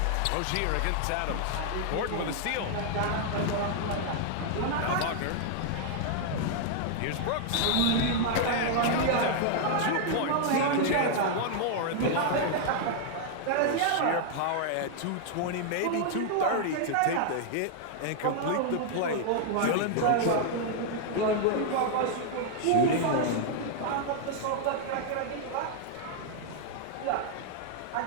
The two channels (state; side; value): different; both; correlation 0.00